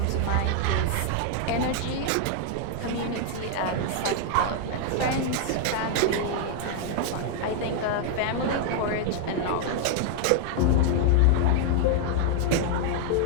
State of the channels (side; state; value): both; different; correlation 0.00